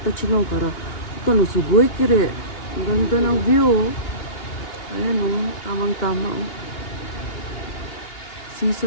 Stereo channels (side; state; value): right; late; 2.8 ms